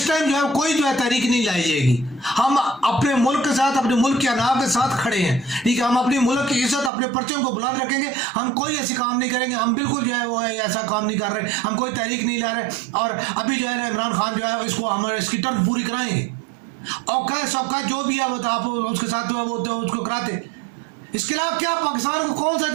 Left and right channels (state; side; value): drops out; left; at 6.9 s